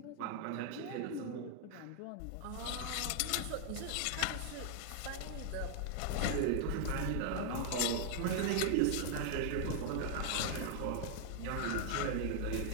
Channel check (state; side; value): different; both; correlation -0.01